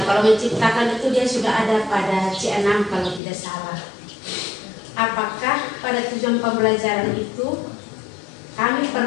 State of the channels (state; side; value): drops out; right; at 3.2 s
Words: kalau menciptakan itu dia sudah ada pada C6 kalau tidak salah. Apakah pada tujuan pembelajaran itu kami